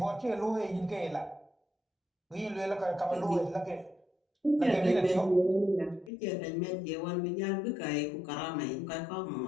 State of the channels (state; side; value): drops out; right; at 6.1 s